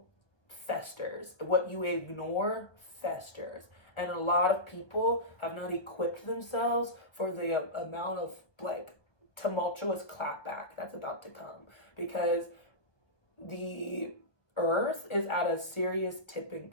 festers. What you ignore festers. And a lot of people have not equipped themselves for the amount of, like, tumultuous clapback that's about to come. Because the earth is at a serious tipping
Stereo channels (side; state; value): right; late; 1.2 ms